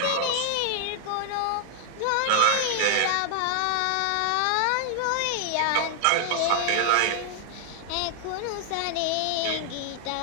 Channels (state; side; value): different; both; correlation 0.00